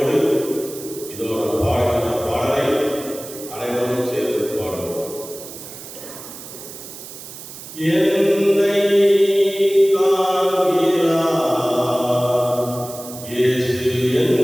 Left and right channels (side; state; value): right; noise; hiss, 14 dB below the sound